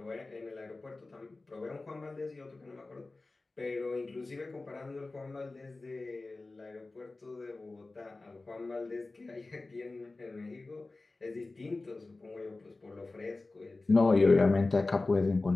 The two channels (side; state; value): right; quieter; 3.3 dB